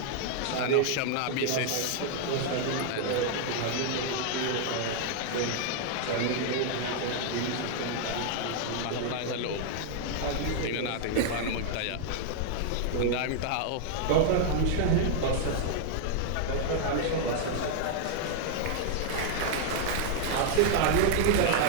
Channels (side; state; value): both; different; correlation 0.00